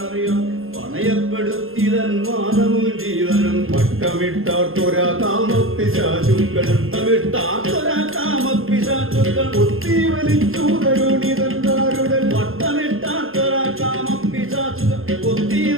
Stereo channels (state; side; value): late; left; 0.60 ms